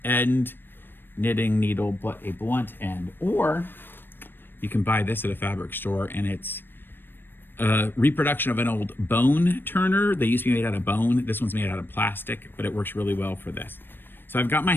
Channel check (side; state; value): right; late; 0.097 ms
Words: end knitting needle, but a blunt end. Or you can buy this at a fabric store, and it's a reproduction of an old bone turner. They used to be made out of bone. This one's made out of plastic, but it works really well for this. So I've got my